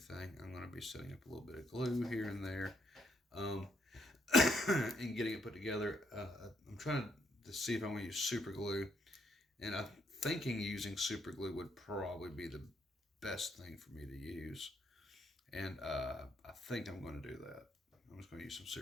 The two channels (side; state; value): both; normal; correlation 0.74